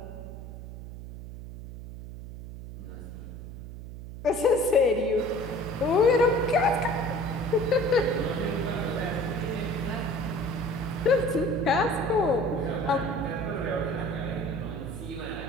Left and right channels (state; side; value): noise; right; hum, 11 dB below the sound